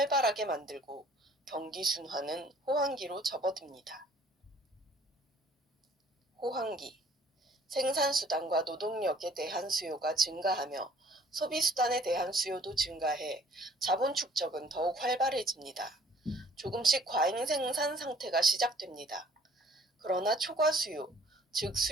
만들고 경기 순환은 호황기로 접어듭니다. 호황기. 생산수단과 노동력에 대한 수요가 증가하며 소비수단에 대한 수요도 증가해 자본 축적은 더욱 활발해집니다. 조금씩 과잉 생산 상태가 시작됩니다. 그러나 초과 수요, 즉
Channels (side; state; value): both; normal; correlation 0.57